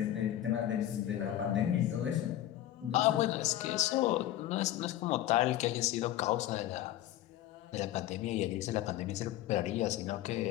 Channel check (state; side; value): quieter; right; 13.3 dB